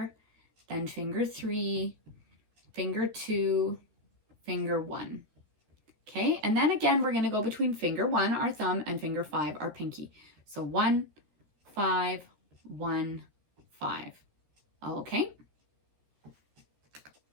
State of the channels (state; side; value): late; left; 13 ms